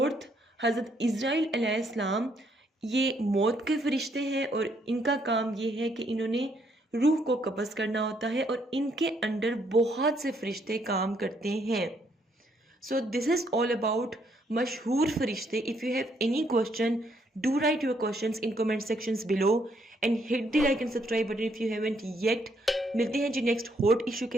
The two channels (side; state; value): both; normal; correlation 0.71